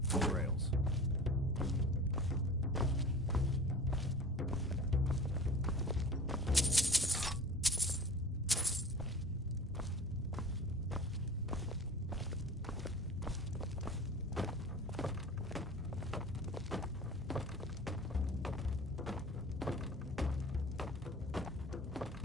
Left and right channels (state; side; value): normal; both; correlation 0.40